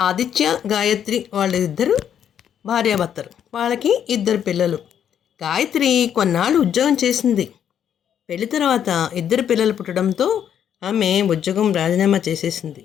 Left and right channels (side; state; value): right; quieter; 9.2 dB